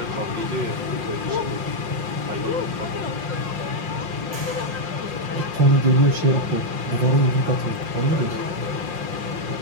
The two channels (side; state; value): left; late; 5.6 ms